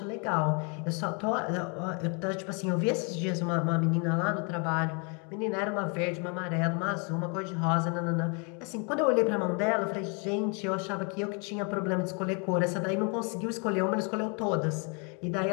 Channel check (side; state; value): right; quieter; 35.6 dB